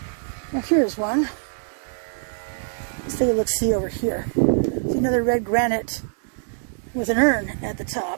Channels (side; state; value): left; silent; digital silence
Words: Now here's one. Let's take a look-see over here. See another red granite with an urn at the